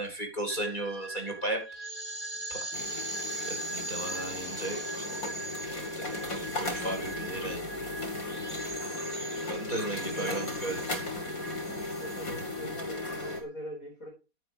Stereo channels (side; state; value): right; late; 4.2 ms